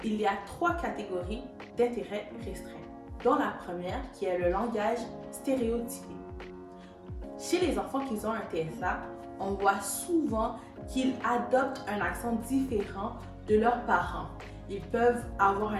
Il y a 3 catégories d'intérêts restreints, dont la première qui est le langage stéréotypé. Chez les enfants qui ont un TSA, on voit souvent qu'ils adoptent un accent différent de leurs parents. Ils peuvent avoir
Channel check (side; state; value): both; identical; correlation 1.00